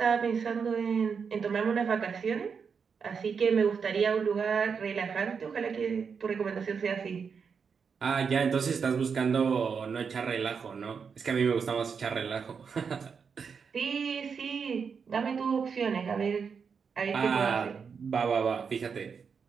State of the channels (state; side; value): quieter; left; 6.1 dB